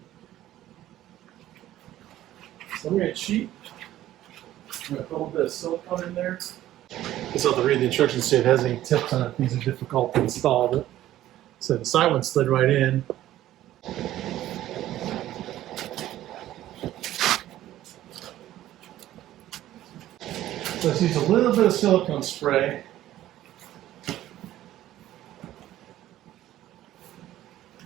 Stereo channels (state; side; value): quieter; left; 13.7 dB